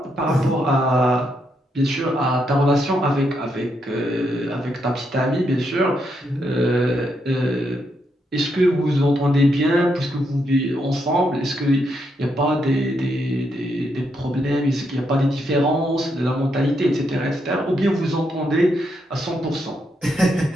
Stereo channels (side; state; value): both; normal; correlation 0.79